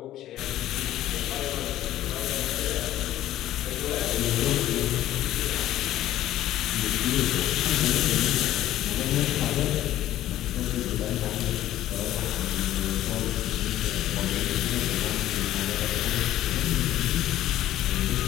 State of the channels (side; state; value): right; quieter; 13.5 dB